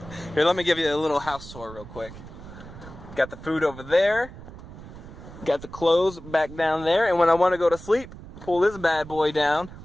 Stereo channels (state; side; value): noise; right; rumble, 15 dB below the sound